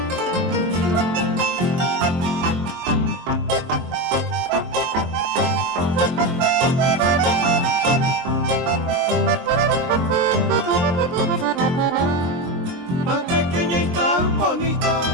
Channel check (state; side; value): late; left; 23 ms